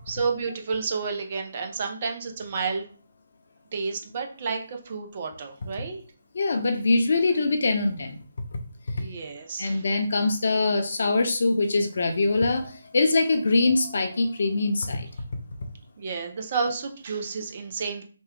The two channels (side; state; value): both; inverted; correlation -0.85